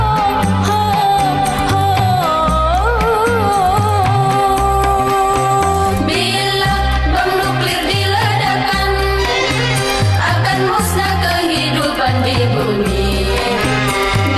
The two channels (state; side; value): identical; both; correlation 1.00